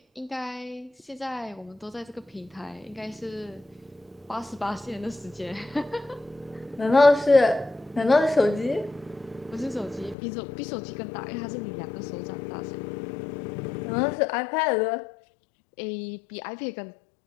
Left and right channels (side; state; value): right; drops out; at 10.2 s